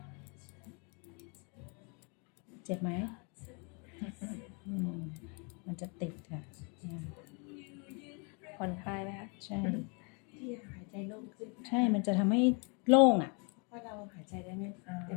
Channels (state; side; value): quieter; right; 34.4 dB